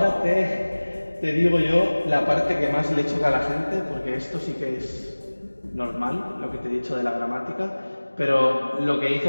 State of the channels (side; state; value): both; inverted; correlation -1.00